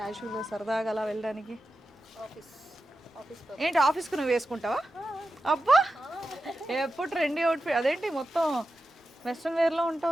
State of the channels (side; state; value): both; normal; correlation 0.91